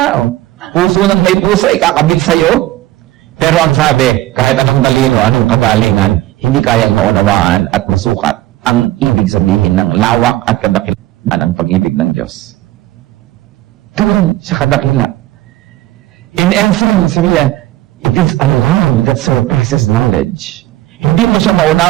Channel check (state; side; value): quieter; left; 15.9 dB